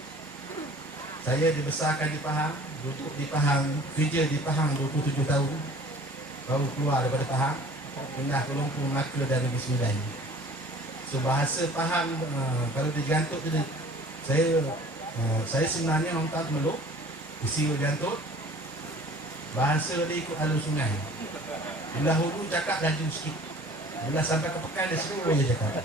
Saya dibesarkan di Pahang, duduk di Pahang, kerja di Pahang 27 tahun. Baru keluar daripada Pahang, pindah ke Lumpur, Melaka dan Negeri Sembilan. So bahasa Pahang, kalau digantuk tu, saya sebenarnya orang tak meluk, isi digantuk. Bahasa dia ikut alur sungai. Bila hulu cakap laju sikit, bila sampai ke pekan dia seluruh je cakap.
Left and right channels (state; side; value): normal; both; correlation 0.48